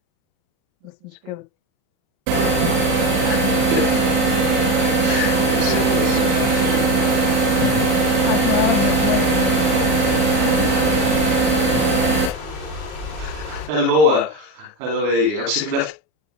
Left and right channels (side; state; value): left; late; 39 ms